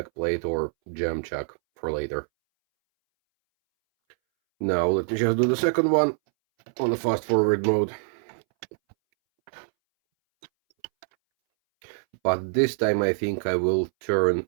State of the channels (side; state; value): left; silent; 62 dB below the other